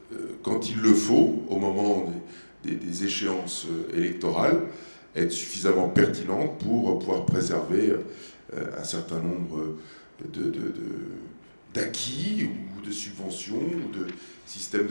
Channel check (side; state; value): both; inverted; correlation -1.00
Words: il le faut, au moment des échéances électorales, être suffisamment pertinentes pour pouvoir préserver un certain nombre d'acquis ou de subventions ou de systèmes